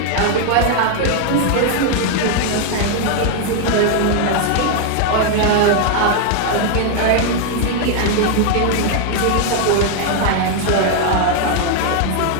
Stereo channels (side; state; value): both; different; correlation 0.00